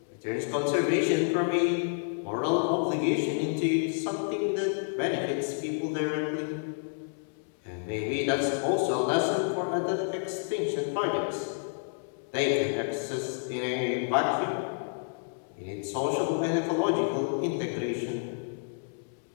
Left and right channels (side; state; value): right; silent; digital silence